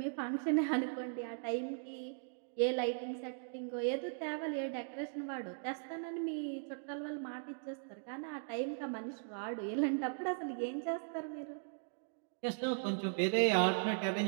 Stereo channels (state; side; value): silent; left; digital silence